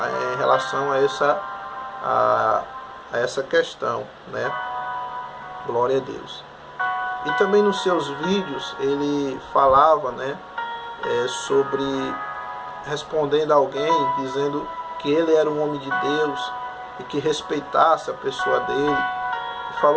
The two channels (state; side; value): identical; both; correlation 1.00